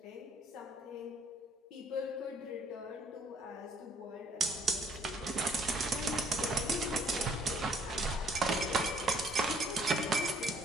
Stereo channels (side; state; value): both; normal; correlation 0.61